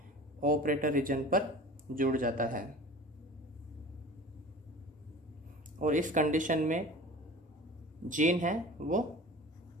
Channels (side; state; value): both; normal; correlation 0.40